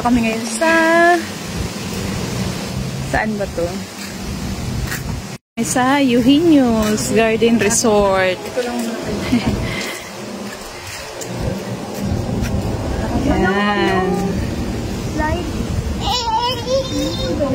kami ngayon sa... Saan ba to? Sa Eugenio's Garden Resort. Yan.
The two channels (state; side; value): identical; both; correlation 1.00